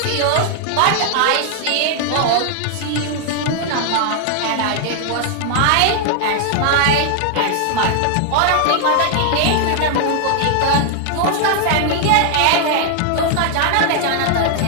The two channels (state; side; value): different; both; correlation 0.00